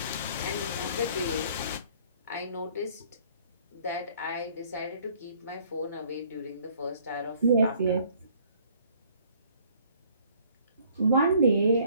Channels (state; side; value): inverted; both; correlation -0.59